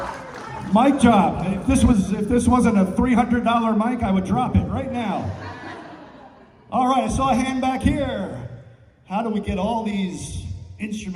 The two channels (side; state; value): both; identical; correlation 1.00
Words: Mic drop. If this wasn't a $300 mic, I would drop it right now. All right, I saw a hand back here. How do we get all these